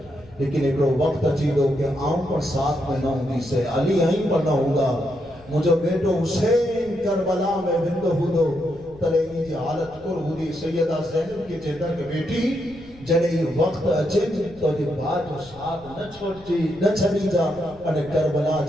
لیکن ایک وقت اچھی دو کہ آؤں پر ساتھ میں نہ ہوں سے علی آئیں پر نہ ہوگا مجھے بیٹو حسین کربلا میں بندو ہودو تلینی جی حالت کر ہودی سیدہ زینب کی چہتا کہ بیٹی جنہیں یہ وقت اچھے تو جی بات جو ساتھ نہ چھوٹی نہ چھڑی جا انہیں کربلا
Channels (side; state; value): left; noise; rumble, 24 dB below the sound